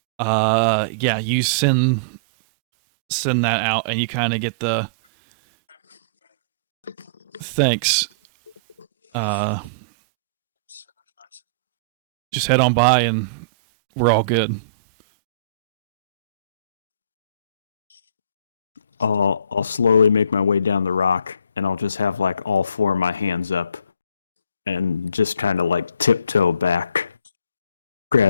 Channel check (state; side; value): inverted; both; correlation -0.43